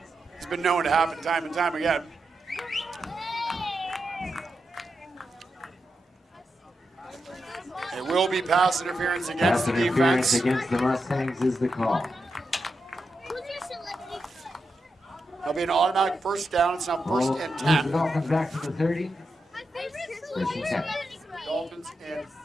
has been known to happen time and time again. It will be pass interference against the Interference defense. against the Mustangs is the call. That'll be an automatic first down. It's now first and Moves 10. the Dolphins back to the 30. First and 10. Dolphins and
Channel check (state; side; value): normal; both; correlation 0.87